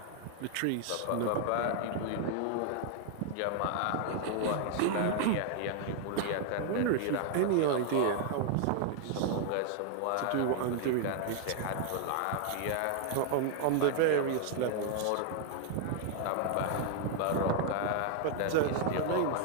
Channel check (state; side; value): different; both; correlation 0.00